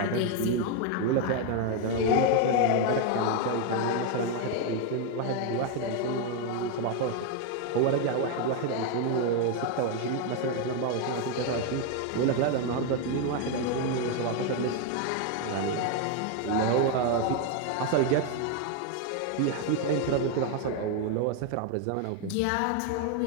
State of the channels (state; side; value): different; both; correlation 0.01